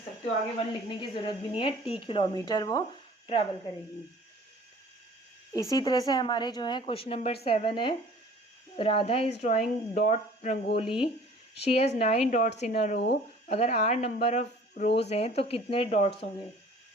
सकते हो आगे 1 लिखने की ज़रूरत भी नहीं है. t किलोमीटर वो ट्रेवल करेगी. इसी तरह से हमारे जो है क्वेश्चन नंबर 7 है. Radha is drawing dot rangoli. She has 9 dots in a row. अगर r नंबर ऑफ रोज हैं तो कितने डॉट्स होंगे.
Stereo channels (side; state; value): both; normal; correlation 0.49